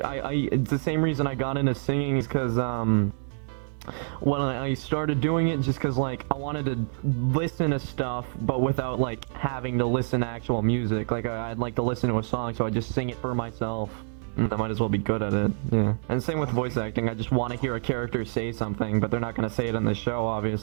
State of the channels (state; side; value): silent; left; digital silence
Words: it's the same reason I got into singing is because, when I started doing it, just because, like, I wanted to listen to stuff, but without, like, having to listen to actual music. Like, I'd like to listen to a song, so I just sing it for myself. I might as well be good at it, yeah. And same with voice acting, I just want to hear a character say something, but they're not going to say it in the show,